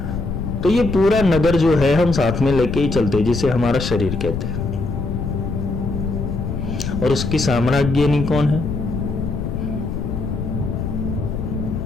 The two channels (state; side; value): noise; left; rumble, 4 dB below the sound